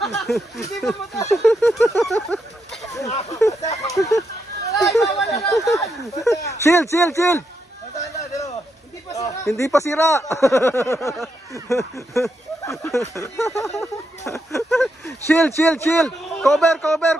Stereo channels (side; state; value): both; normal; correlation 0.81